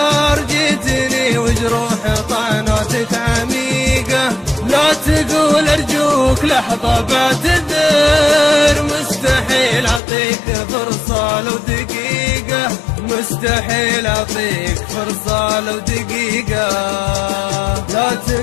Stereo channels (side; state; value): right; drops out; at 10.0 s